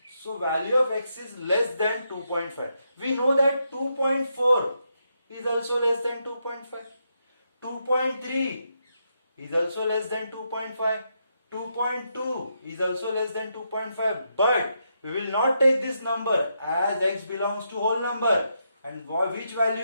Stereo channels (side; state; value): both; inverted; correlation -0.81